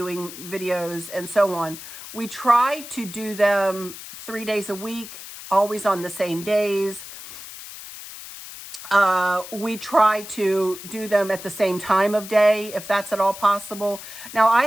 videos and so on. We try to do them 3 days a week, always on the same days. We try to do them at the same time of day, if that's at all possible. Now, I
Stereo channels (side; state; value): left; noise; hiss, 13 dB below the sound